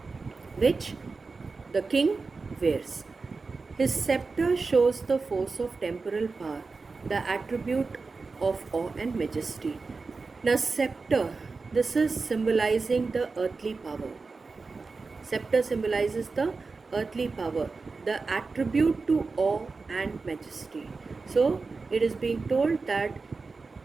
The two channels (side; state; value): left; quieter; 4.2 dB